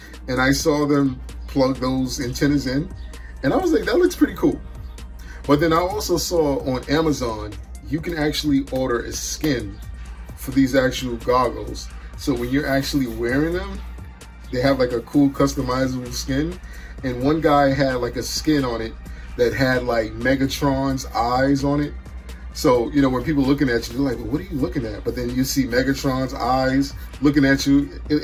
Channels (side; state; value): both; identical; correlation 1.00